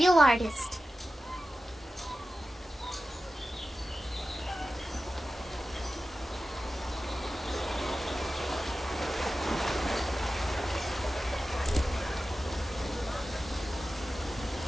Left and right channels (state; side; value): normal; both; correlation 0.94